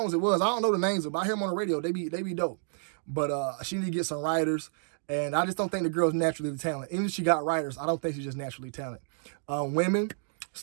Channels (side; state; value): left; silent; digital silence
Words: it was. I don't know the names of them. I hear them on the radio. They be dope. But she need to get some writers. And I just don't think the girl's naturally talented. Even if she got writers, I don't think she's just naturally talented. Women,